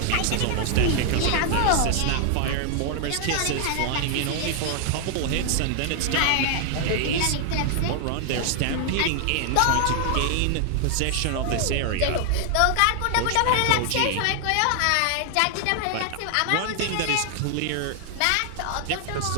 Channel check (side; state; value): both; different; correlation 0.00